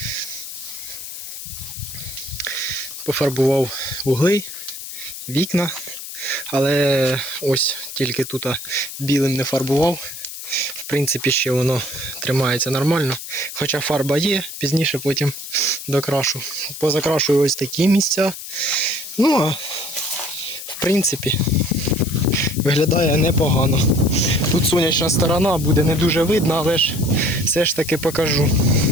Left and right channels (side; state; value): left; noise; hiss, 10 dB below the sound